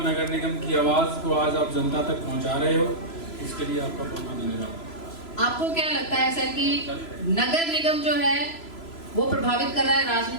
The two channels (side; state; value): right; late; 3.0 ms